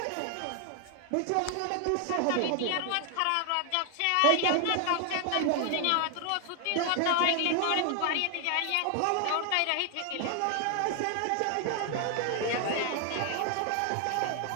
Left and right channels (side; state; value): both; different; correlation 0.00